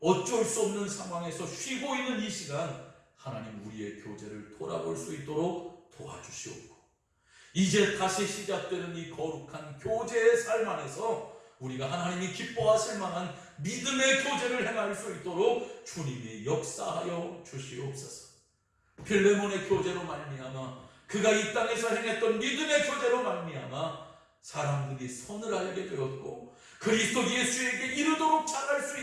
어쩔 수 없는 상황에서 쉬고 있는 이 시간, 하나님 우리의 교제를 돌아볼 수 있도록 도와주시옵고, 이제 다시 시작되는 이 거룩한 교제의 삶 안에서 우리가 하나님이 기뻐하실 만한 믿음의 교제를 행할 수 있도록 주님이 역사하여 주시옵소서. 필레몬의 교제로 말미암아, 그가 이 땅에서 행했던 믿음의 교제로 말미암아 사람들이 선을 알게 되었고 그리스도 예수에게 이르도록 잘할 수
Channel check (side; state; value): both; identical; correlation 1.00